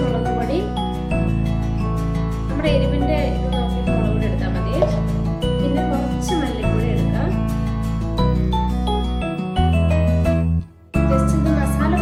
മുളക് പൊടി, നമ്മുടെ എരിവിന്റെ ഇത് നോക്കിയിട്ട് മുളക് പൊടി എടുത്താൽ മതി. പിന്നെ കുറച്ച് മല്ലിപ്പൊടി എടുക്കാം. ജസ്റ്റ് ഇത് മസാല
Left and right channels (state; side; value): identical; both; correlation 1.00